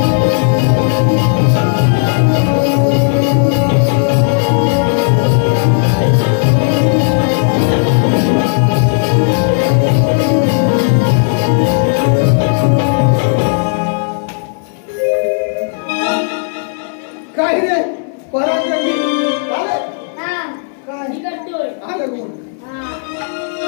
काय रे पराक्रमी झालं? हा. काय? मी करतोय. आलं कोण? हा.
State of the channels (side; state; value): right; silent; digital silence